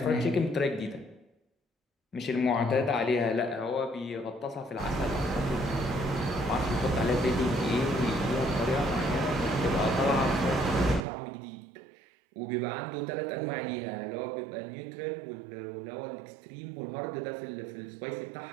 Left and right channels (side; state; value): left; drops out; at 11.1 s